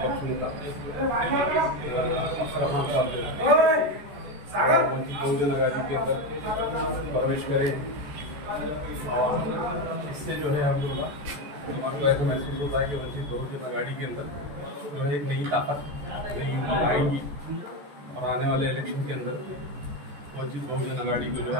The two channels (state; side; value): late; left; 14 ms